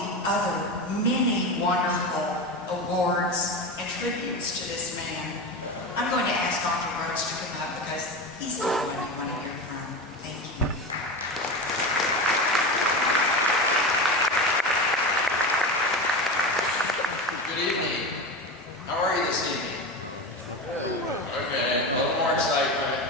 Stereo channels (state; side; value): normal; both; correlation 0.23